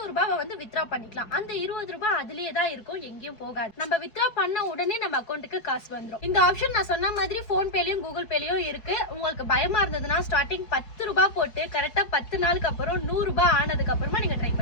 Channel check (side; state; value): right; late; 4.7 ms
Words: ரூபாய் வந்து வித்ரா பண்ணிக்கலாம். அந்த 20 ரூபாய் அதுலயே தான் இருக்கும், எங்கேயும் போகாது. நம்ம வித்ரா பண்ண உடனே நம்ம அக்கௌண்ட்டுக்கு காசு வந்துடும். இந்த ஆப்ஷன் நான் சொன்ன மாதிரி போன் பேலயும் கூகுள் பேலயும் இருக்கு. உங்களுக்கு பயமா இருந்ததுன்னா ஸ்டார்டிங் 10 ரூபாய் போட்டு கரெக்டா 10 நாளுக்கு அப்புறம் 100 ரூபாய் ஆனதுக்கு அப்புறமா நீங்க ட்ரை